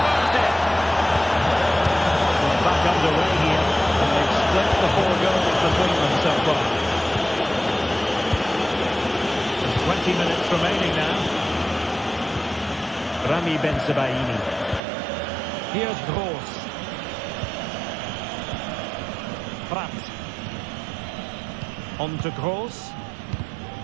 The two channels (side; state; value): left; drops out; at 14.8 s